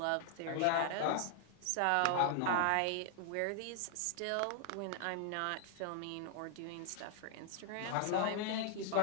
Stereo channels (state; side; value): different; both; correlation 0.00